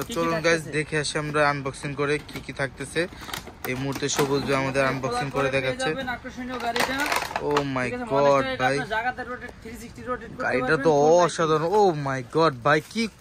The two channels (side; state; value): both; identical; correlation 1.00